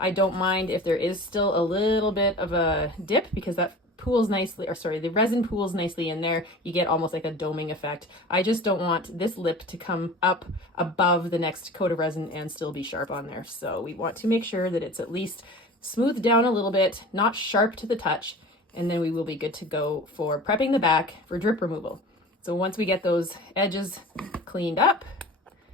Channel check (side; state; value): both; normal; correlation 0.38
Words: don't mind if there is still a little bit of a dip, because that pools nicely, or sorry, the resin pools nicely in there. You get almost like a doming effect. I just don't want this lip to come up above the next coat of resin and still be sharp on there. So we want to make sure that it's at least smoothed down a little bit, not sharp to the touch, and then we will be good to go for prepping the back for drip removal. So once we get those edges cleaned up,